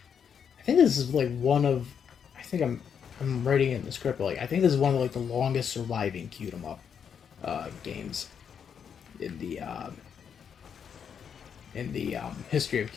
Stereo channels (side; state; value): right; quieter; 7.5 dB